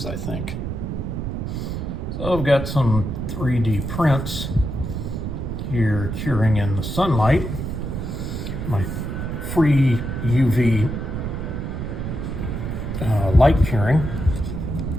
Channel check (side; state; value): right; noise; rumble, 4 dB below the sound